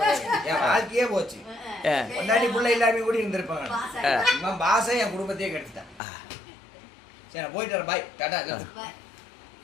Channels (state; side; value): drops out; right; at 6.0 s